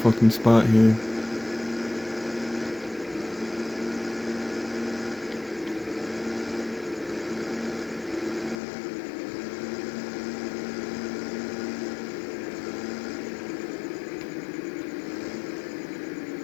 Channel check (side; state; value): right; drops out; at 8.6 s